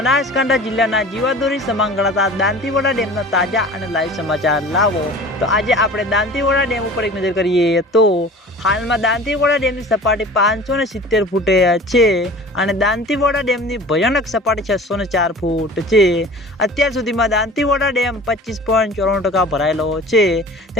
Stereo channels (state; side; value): normal; both; correlation 0.41